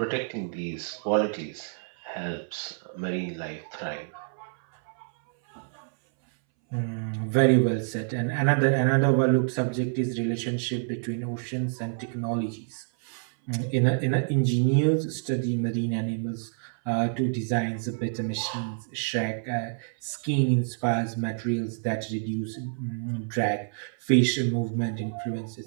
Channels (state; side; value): silent; left; 60 dB below the other